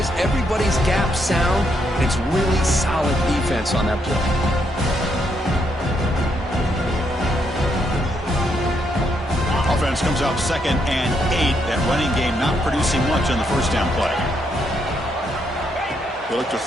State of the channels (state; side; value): normal; both; correlation 0.76